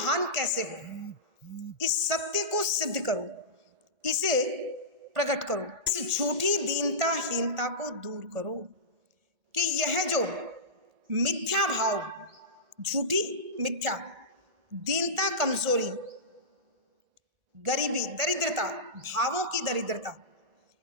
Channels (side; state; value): left; late; 1.8 ms